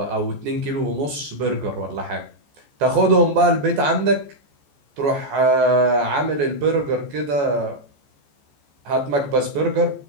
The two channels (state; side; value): late; left; 14 ms